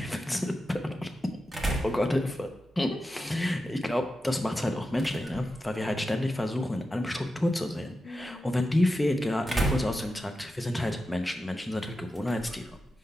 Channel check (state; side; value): normal; both; correlation 0.91